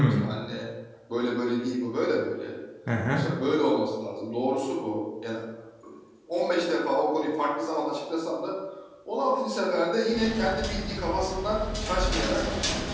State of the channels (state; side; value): identical; both; correlation 1.00